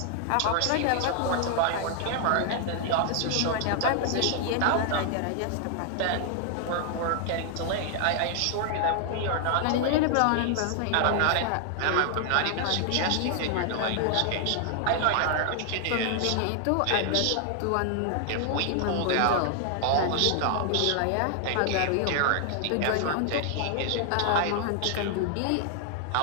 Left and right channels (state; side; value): different; both; correlation 0.00